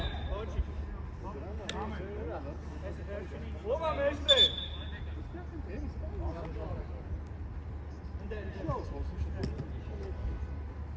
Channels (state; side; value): identical; both; correlation 1.00